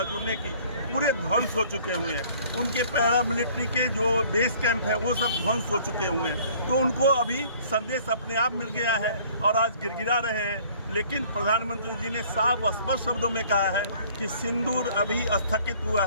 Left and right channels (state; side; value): inverted; both; correlation -0.55